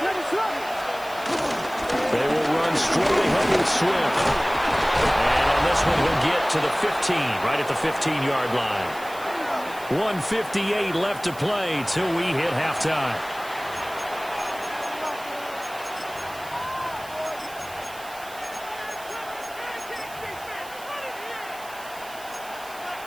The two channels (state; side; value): noise; right; hiss, 18 dB below the sound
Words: They will run straight ahead with Swift. And on this one, he'll get to the 15, right at the 15-yard line. 1:58 left to play till we hit halftime.